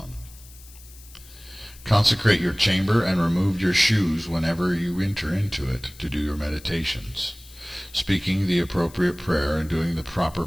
Consecrate your chamber and remove your shoes whenever you enter into it to do your meditations, speaking the appropriate prayer and doing the proper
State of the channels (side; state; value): left; noise; hiss, 21 dB below the sound